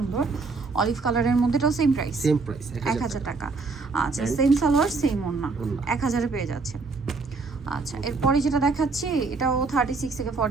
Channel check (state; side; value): quieter; left; 4.1 dB